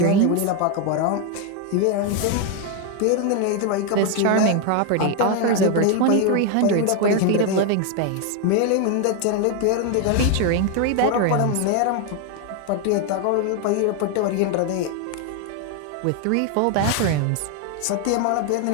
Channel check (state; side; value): different; both; correlation 0.01